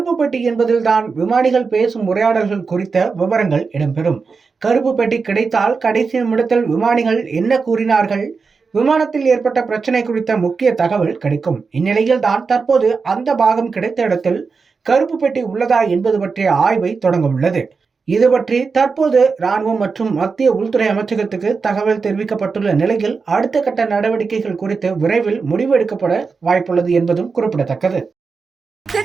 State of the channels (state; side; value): quieter; left; 4.9 dB